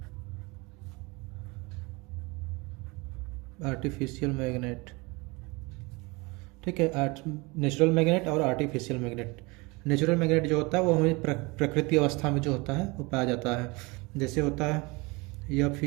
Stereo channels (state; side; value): quieter; left; 25.9 dB